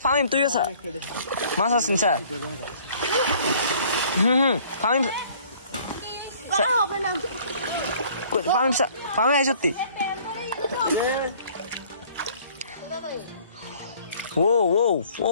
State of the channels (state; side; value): inverted; both; correlation -0.55